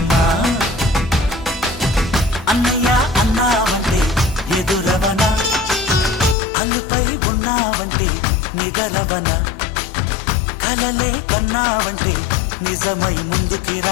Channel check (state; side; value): drops out; right; at 6.4 s